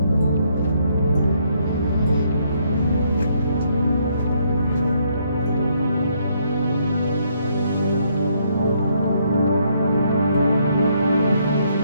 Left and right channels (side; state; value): both; inverted; correlation -0.71